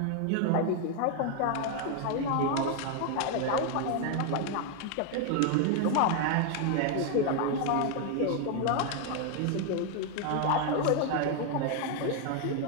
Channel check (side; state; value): both; different; correlation 0.01